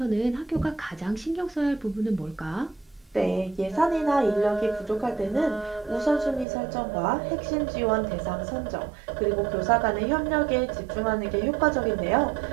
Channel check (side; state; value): left; drops out; at 6.5 s